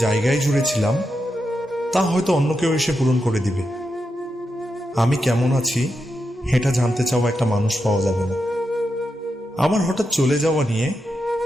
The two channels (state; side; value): normal; both; correlation 0.87